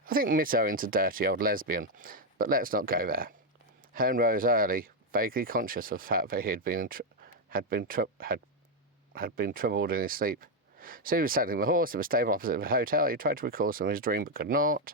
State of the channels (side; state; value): both; normal; correlation 0.04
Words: think Miss Owen's a dirty old lesbian, but let's not go there. Herne rose early, vaguely conscious of the fact that he had been troubled in his sleep. So he was saddling the horse at the stable opposite the hotel. He tried to recall some of his dream, but could